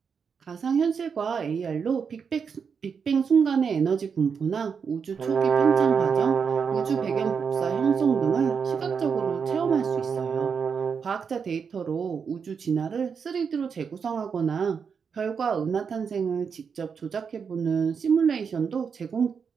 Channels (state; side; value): quieter; left; 6.2 dB